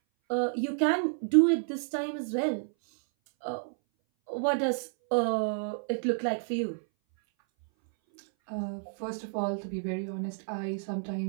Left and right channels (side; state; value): left; silent; 58 dB below the other